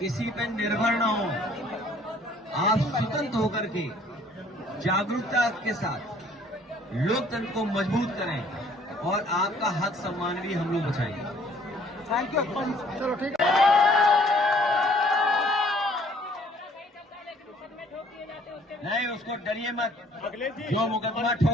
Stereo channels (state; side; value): normal; both; correlation 0.59